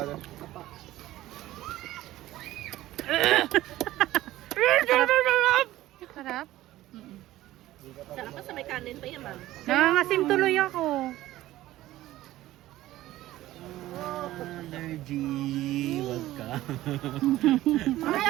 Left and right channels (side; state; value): left; quieter; 15.5 dB